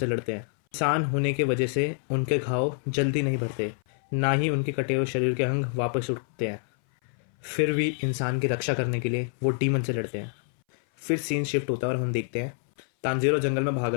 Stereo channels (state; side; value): silent; right; 60 dB below the other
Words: लड़ते हैं। इंसान होने की वजह से उनके घाव जल्दी नहीं भरते, ना ही उनके कटे हुए शरीर के अंग वापस उठते हैं। फिर भी इंसान की रक्षा करने के लिए वो डीमन से लड़ते हैं। फिर सीन शिफ्ट होता है और हम देखते हैं तांजीरो जंगल में भाग